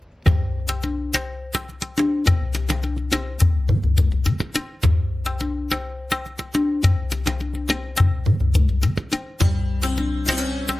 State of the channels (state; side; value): normal; both; correlation 0.96